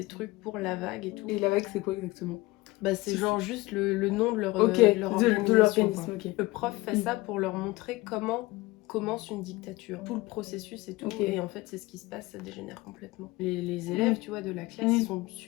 trucs pour La Vague et tout. Et La Vague, c'est quoi exactement? Bah, c'est genre juste le nom de leur, de organisation. l'organisme. Ok. Le prof fait ça pour leur montrer comment commence une dictature, tout le processus et tout, et en fait c'est ce qui se passe, ça dégénère complètement. Les élèves, tu vois, de la classe, ils sont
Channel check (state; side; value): quieter; right; 20.8 dB